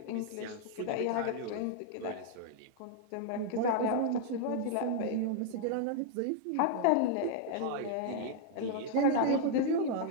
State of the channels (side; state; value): both; different; correlation 0.00